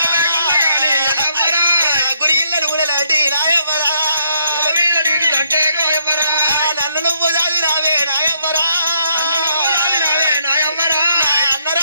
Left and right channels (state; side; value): inverted; both; correlation -0.71